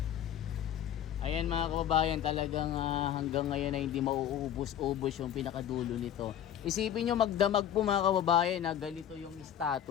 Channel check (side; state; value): right; quieter; 10.3 dB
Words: Ayan mga kababayan, talagang hanggang ngayon ay hindi mauubos-ubos yung pinakadulo nito. Isipin nyo magdamag po mga kababayan na ganito yung